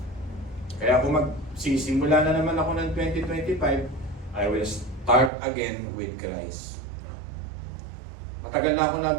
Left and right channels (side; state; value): left; drops out; at 5.3 s